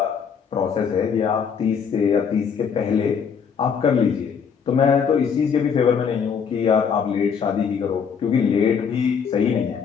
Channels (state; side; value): quieter; right; 6.7 dB